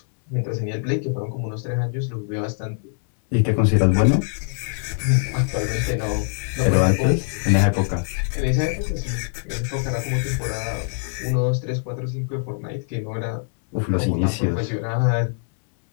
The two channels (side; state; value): right; silent; 63 dB below the other